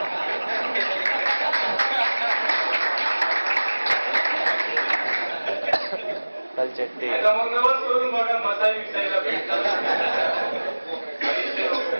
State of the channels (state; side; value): inverted; both; correlation -1.00